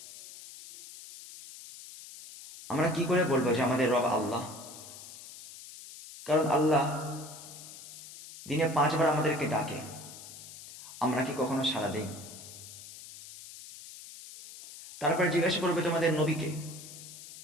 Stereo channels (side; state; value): left; noise; hiss, 15 dB below the sound